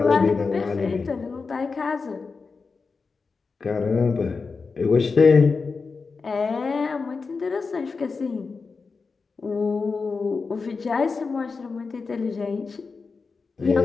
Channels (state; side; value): quieter; right; 4.6 dB